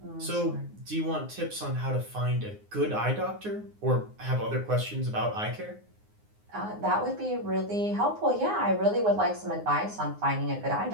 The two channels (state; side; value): late; left; 9.6 ms